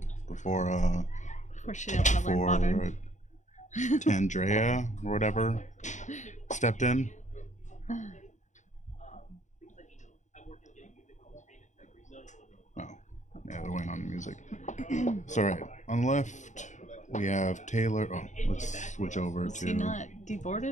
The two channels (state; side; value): late; right; 0.35 ms